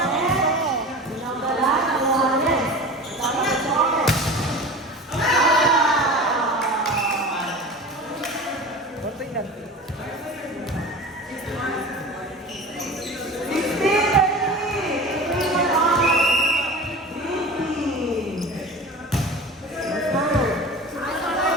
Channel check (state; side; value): normal; both; correlation 0.34